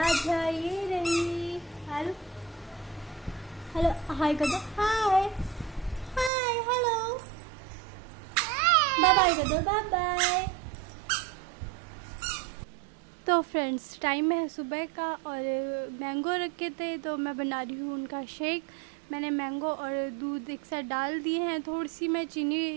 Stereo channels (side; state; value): left; drops out; at 6.3 s